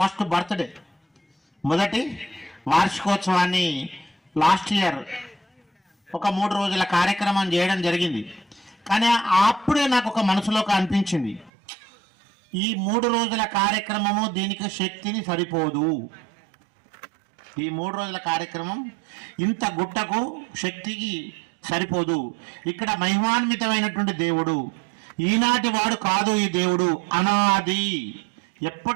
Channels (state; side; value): drops out; left; at 11.5 s